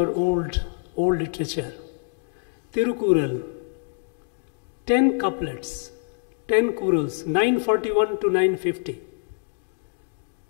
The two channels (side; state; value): right; silent; digital silence